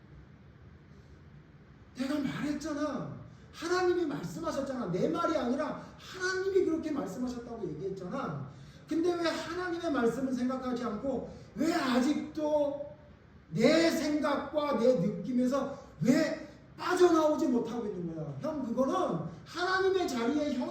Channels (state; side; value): identical; both; correlation 1.00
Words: 내가 말했잖아. 하나님이 말씀하셨잖아. 내 말이 아니라 하나님이 그렇게 말씀하셨다고 얘기했잖아. 근데 왜 하나님의 말씀을 생각하지 않고 왜 아직도 내 생각과 내 느낌에서 왜 빠져나오지 못하고 있는 거야? 형, 그거는 하나님의 자리에